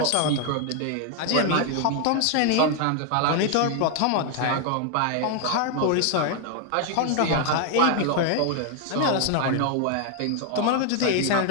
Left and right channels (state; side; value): different; both; correlation 0.00